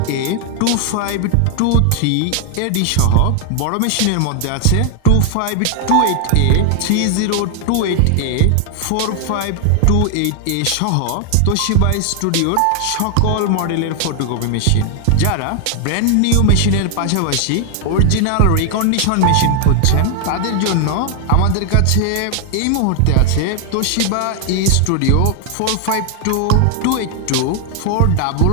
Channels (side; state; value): both; different; correlation 0.00